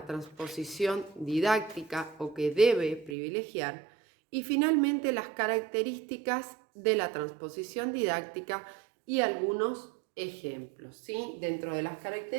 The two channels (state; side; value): drops out; left; at 3.2 s